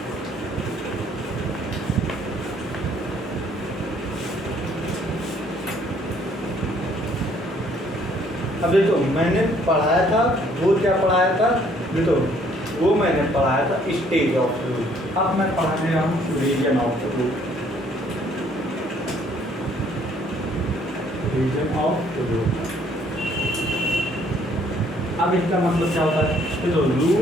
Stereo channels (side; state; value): both; normal; correlation 0.63